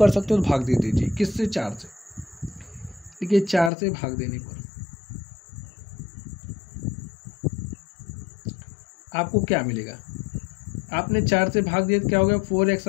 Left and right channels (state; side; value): drops out; right; at 3.7 s